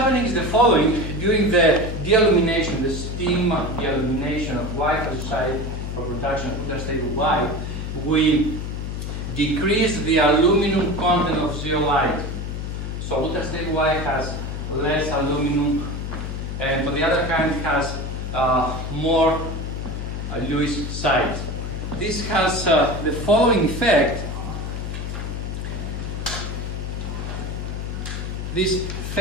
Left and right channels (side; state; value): left; noise; hum, 5 dB below the sound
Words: is the following. During the dealumination, the steam dealumination of Y phagosite for production of ultra-stable Y, we decrease the aluminum content of zeolite. So ultra-stable Y has less aluminum, and on the other hand has more Lewis sides. This has the following effect. This